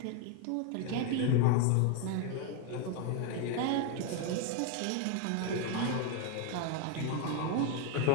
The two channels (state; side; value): different; both; correlation 0.01